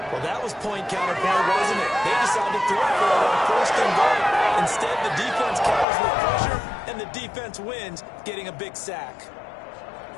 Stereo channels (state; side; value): drops out; right; at 5.9 s